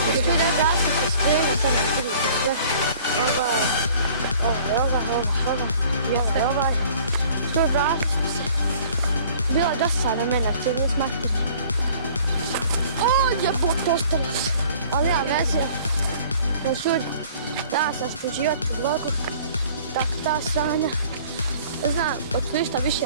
Što da gasi se sprema, sad ne vidite sve. Ovaj. Što gasi se. Bila dosadna mene, će nije smašiti. Jebut, ostali se. Ali ja veze. Znači, da sam stuđivati u vlogu. Tako ta sranja. Ne znam, od ništa više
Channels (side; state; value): both; inverted; correlation -0.52